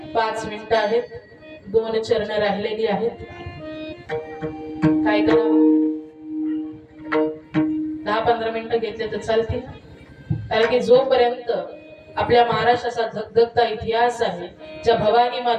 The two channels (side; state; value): both; identical; correlation 1.00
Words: 5 मिनिटं आहेत, 2 चरण राहिलेली आहेत. काय करावं? 10-15 मिनिटं घेतले तर चालतील. कारण की जोपर्यंत आपल्या महाराष्ट्राचा धगधगता इतिहास आहे, ज्या भवानी